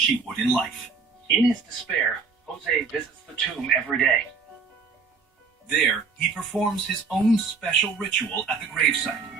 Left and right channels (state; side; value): quieter; left; 5.0 dB